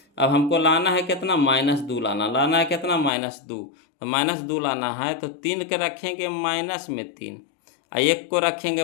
अब हमको लाना है कितना -2 लाना है कितना -2, तो -2 लाना है, तो 3 के रखेंगे माइनस में 3, और 1 को रखेंगे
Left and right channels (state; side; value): drops out; right; at 3.1 s